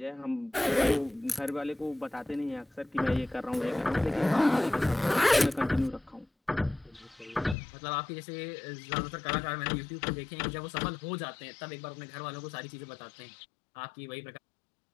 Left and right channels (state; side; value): drops out; right; at 7.6 s